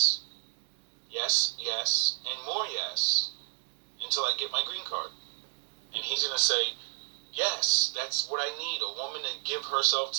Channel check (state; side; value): silent; left; digital silence